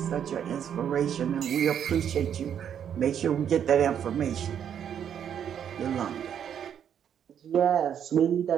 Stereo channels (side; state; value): left; quieter; 8.8 dB